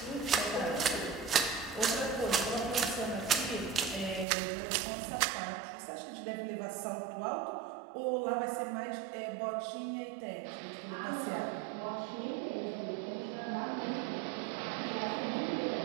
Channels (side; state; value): left; drops out; at 4.2 s